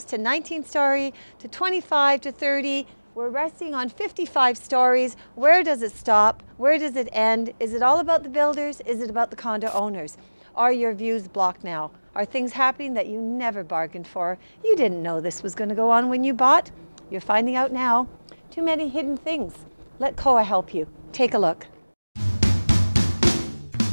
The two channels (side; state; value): both; inverted; correlation -1.00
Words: to 19-story to 25 to 30. We're resting on 55 stories. Where does it stop? Where does it end? Is it all about the builders? Is it about the condo owners? Are your views blocked now? Are things happening that you never bargained for? You didn't know this was going to go on when you bought. You're finding out now. Too many hidden things. Let COA help you. Take a look.